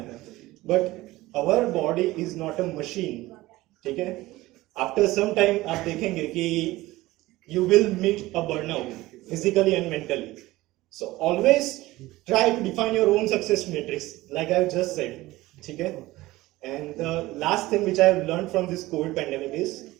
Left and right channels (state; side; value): quieter; left; 18.3 dB